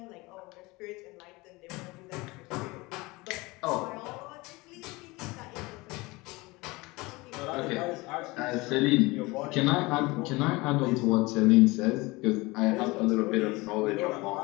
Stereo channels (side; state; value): right; quieter; 23.1 dB